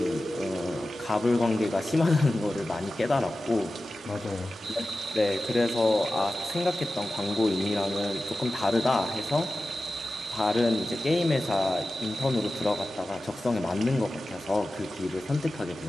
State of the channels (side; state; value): both; normal; correlation 0.94